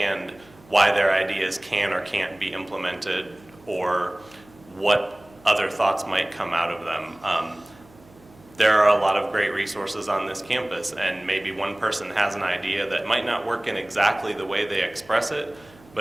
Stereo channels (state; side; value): noise; right; hum, 26 dB below the sound